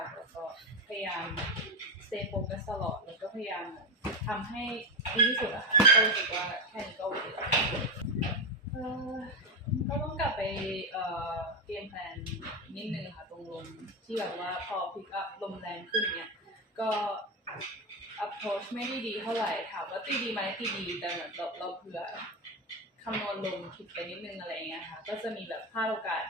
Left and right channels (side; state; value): both; normal; correlation 0.13